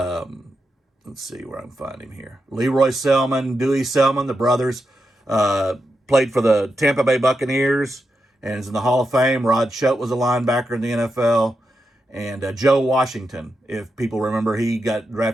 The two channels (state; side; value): normal; both; correlation 0.86